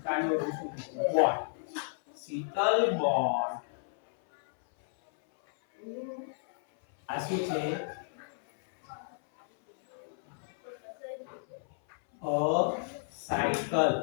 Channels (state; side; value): silent; right; 56 dB below the other